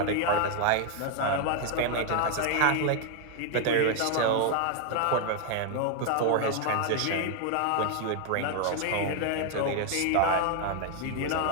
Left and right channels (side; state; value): both; different; correlation 0.00